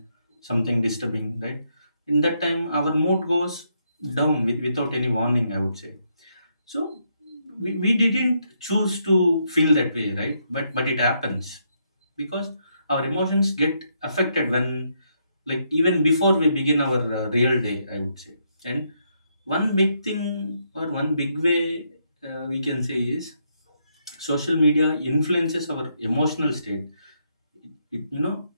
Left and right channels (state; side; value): inverted; both; correlation -0.77